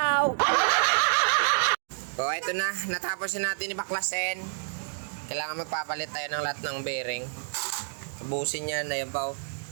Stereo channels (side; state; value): left; silent; digital silence